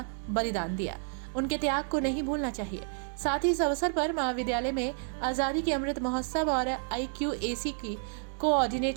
बलिदान दिया। उनके त्याग को नहीं भूलना चाहिए। साथ ही इस अवसर पर महाविद्यालय में आज़ादी के अमृत महोत्सव और IQAC की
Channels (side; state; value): left; silent; 58 dB below the other